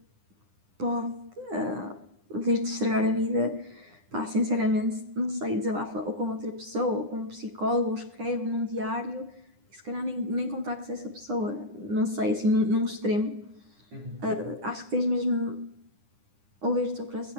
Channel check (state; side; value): late; left; 9.9 ms